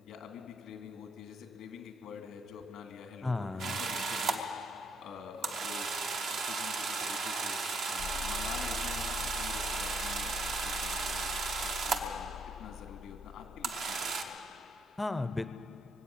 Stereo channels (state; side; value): normal; both; correlation 0.71